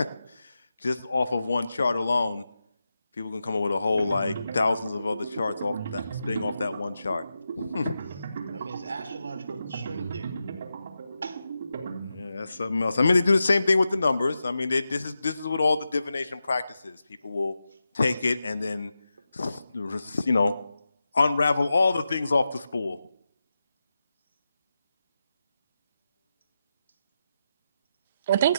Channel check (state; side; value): inverted; both; correlation -0.90